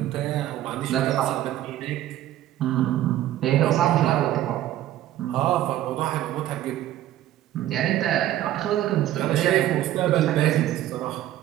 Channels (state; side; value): quieter; left; 13.3 dB